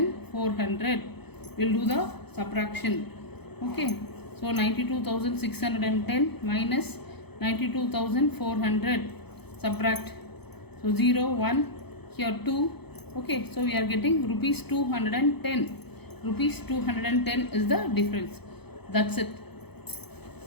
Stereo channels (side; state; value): right; late; 0.98 ms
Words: We will do the subtraction. Okay, so 92,610 minus 92,400, subtract. So 0 1, here 2. Okay, so we are getting rupees 210. Rupees 210 is the difference. That's it.